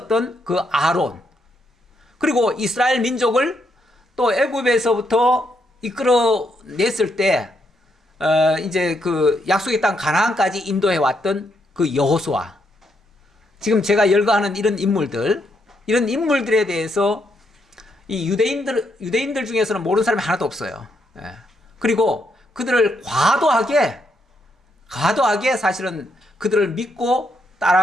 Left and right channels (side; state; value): both; normal; correlation 0.77